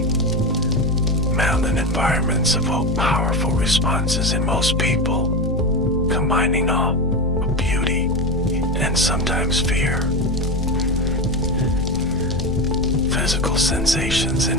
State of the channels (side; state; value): both; normal; correlation 0.18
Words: Mountain environments evoke powerful responses in most people, combining awe, beauty, and sometimes fear. Physical sensations